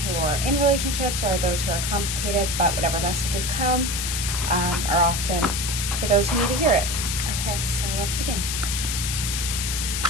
who are in relationships or those who are complicated, but whatever messages come are often for those who need to hear it. Okay, so let's begin.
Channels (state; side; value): noise; left; hiss, 2 dB below the sound